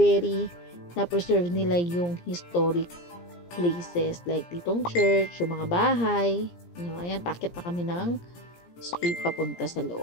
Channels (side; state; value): right; late; 17 ms